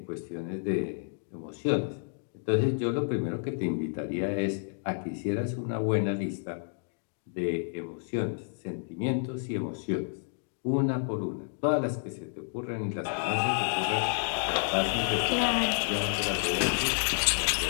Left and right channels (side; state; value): right; silent; digital silence